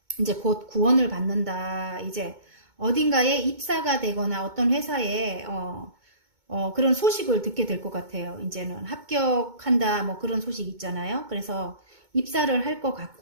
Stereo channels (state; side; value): late; left; 2.2 ms